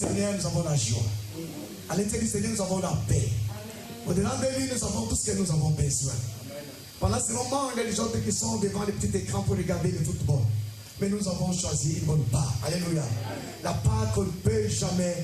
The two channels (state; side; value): identical; both; correlation 1.00